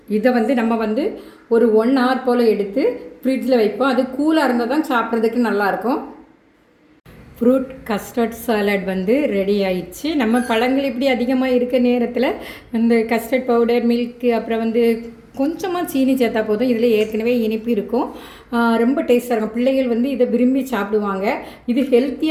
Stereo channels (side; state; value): both; identical; correlation 1.00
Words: இதை நம்ம ஒரு 1 hour போல் எடுத்து ஃப்ரிட்ஜில் வைப்போம். அது கூலாக இருந்தால் தான் சாப்பிட்றதுக்கு நல்லாயிருக்கும். ஃப்ரூட் கஸ்டர்ட் சாலட் ரெடி ஆயிடுச்சு. நம்ம பழங்கள் இப்படி அதிகமாக இருக்க நேரத்தில் இந்த கஸ்டர்ட் பவுடர், மில்க்கு, அப்புறம் கொஞ்சமாக சீனி சேர்த்தா போதும். இதில் ஏற்கனவே இனிப்பு இருக்கும். ரொம்ப டேஸ்ட்டாக இருக்கும். பிள்ளைகள் இதை விரும்பி சாப்பிடுவாங்க. இது